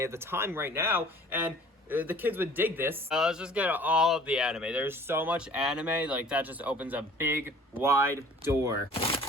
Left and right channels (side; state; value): both; normal; correlation 0.49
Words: the time right now. And the kids would dig this. Let's just get all of the anime. There's so much anime, like that just opens a big, wide door.